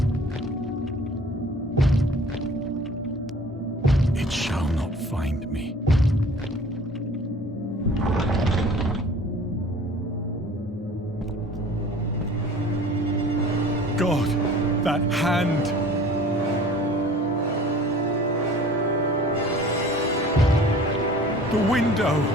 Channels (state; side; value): normal; both; correlation 0.47